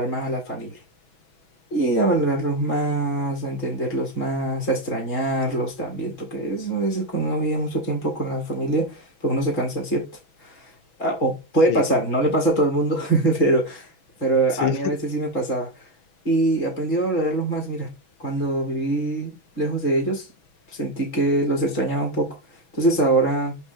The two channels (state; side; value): late; right; 6.1 ms